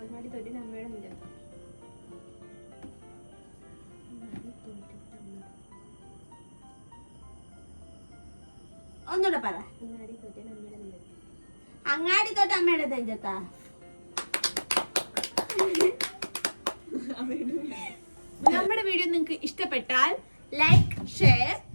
തോറ്റതിന് അമ്മയുടെ നെഞ്ചത്ത്. ഒന്നുകൂടെ പറ. അങ്ങാടി തോറ്റതിന് അമ്മയുടെ നെഞ്ചത്ത്. അങ്ങാടി തോറ്റ അമ്മയുടെ നെഞ്ചത്താ. നമ്മുടെ വീഡിയോ നിങ്ങൾക്ക് ഇഷ്ടപ്പെട്ടാൽ ലൈക്ക് ഷെയർ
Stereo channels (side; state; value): both; inverted; correlation -1.00